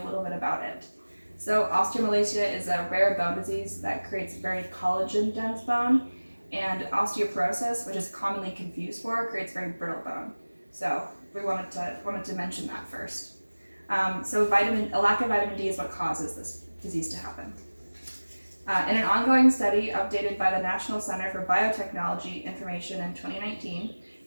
a little bit about it. So osteomalacia is a rare bone disease that creates very collagen dense bone, and osteoporosis, which is commonly confused for, creates very brittle bone. So we wanted to mention that first. A lack of vitamin D is what causes this disease to happen. In an ongoing study updated by the National Center for Biotechnology Information in 2019,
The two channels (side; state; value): both; inverted; correlation -1.00